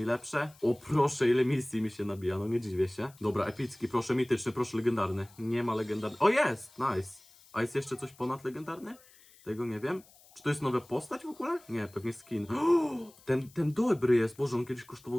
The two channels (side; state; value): left; noise; hiss, 26 dB below the sound